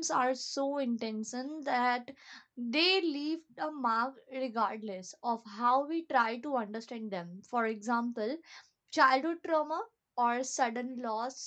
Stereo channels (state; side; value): identical; both; correlation 1.00